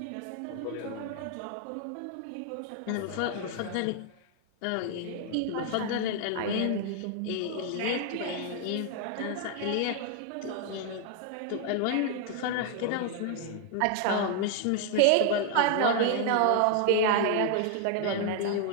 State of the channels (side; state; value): both; different; correlation 0.00